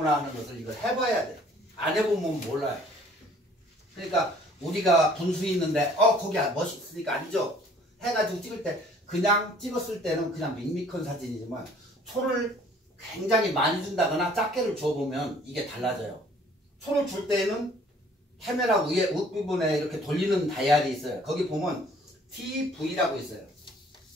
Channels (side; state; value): both; normal; correlation 0.56